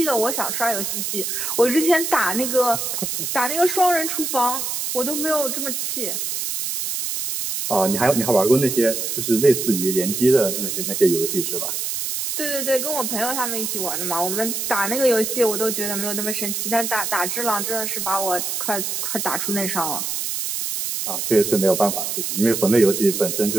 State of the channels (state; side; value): noise; right; hiss, 2 dB below the sound